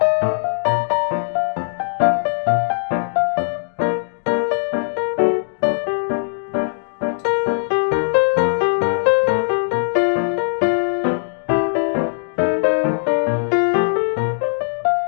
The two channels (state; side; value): silent; right; digital silence